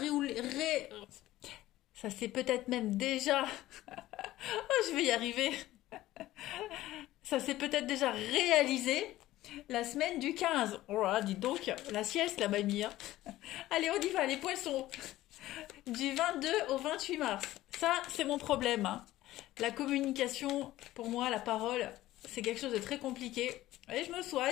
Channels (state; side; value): quieter; right; 15.7 dB